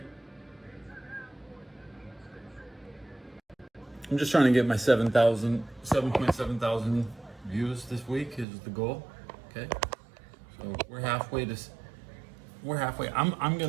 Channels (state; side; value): drops out; left; at 8.5 s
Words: I'm just trying to get my 7.7 thousand views this week is the goal. Okay. So we're halfway. I'm